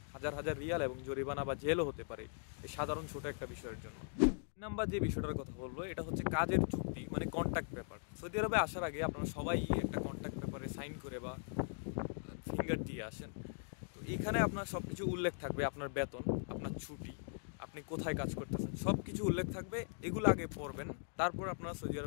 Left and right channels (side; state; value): right; silent; digital silence